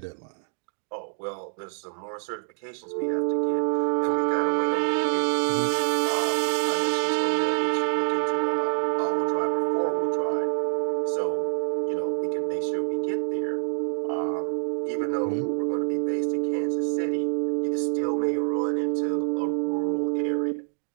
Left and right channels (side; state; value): left; silent; digital silence